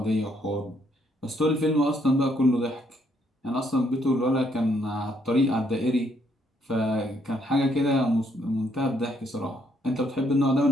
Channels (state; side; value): normal; both; correlation 0.71